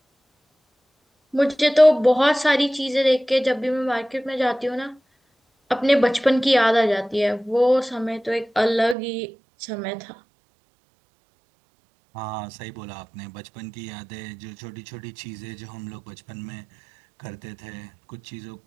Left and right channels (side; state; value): left; drops out; at 9.0 s